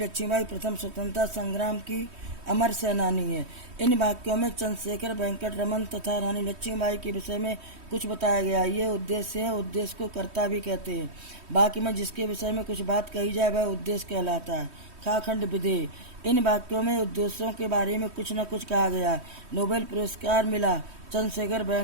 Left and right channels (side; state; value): left; late; 3.1 ms